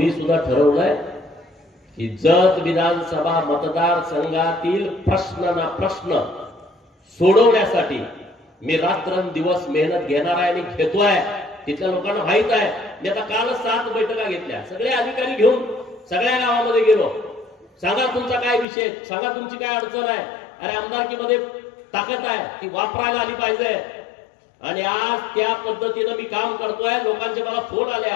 सुद्धा ठरवलंय की जत विधानसभा मतदारसंघातील प्रश्न सोडवण्यासाठी मी रात्रंदिवस मेहनत घेणार आहे आणि घेतोय. तिथल्या लोकांना माहित आहे. मी आता कालच 7 बैठका घेतल्या. सगळे अधिकारी घेऊन सगळ्या गावामध्ये गेलो. सांगा तुमचा काय विषय, सांगा तुमची काय अडचण आहे. अरे आमदारकीमध्ये ताकद आहे ती वापरायला आली पाहिजे. आणि आज त्या पद्धतीनं मी काम करतोय. लोकांचे मला फोन आले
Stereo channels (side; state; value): right; drops out; at 18.7 s